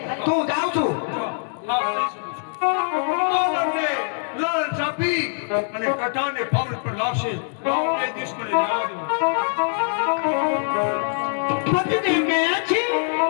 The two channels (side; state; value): right; silent; digital silence